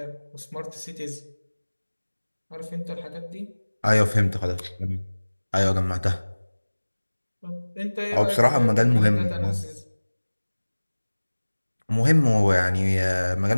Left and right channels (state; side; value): inverted; both; correlation -1.00